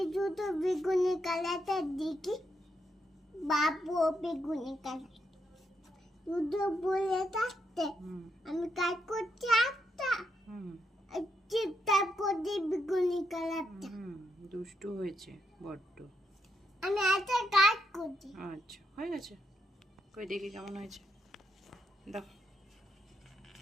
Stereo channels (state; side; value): normal; both; correlation 0.80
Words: দুটো বেগুনি কালারটা দেখি বাবু বেগুনি কালার দুটো বলে থাকতে আমি কাজ করছি একটা তারপর দিয়ে বেগুনি কালারটা দুষ্টু হয়েছে বড্ড। আমি একটা কাজ করছি। আচ্ছা, হয়ে গেছে। কই দেখি কেমন হয়েছে, দেখো।